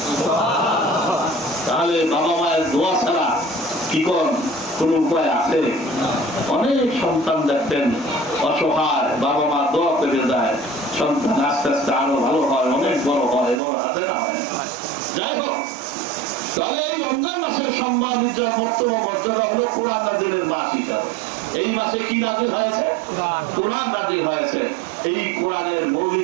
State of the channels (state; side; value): drops out; left; at 13.6 s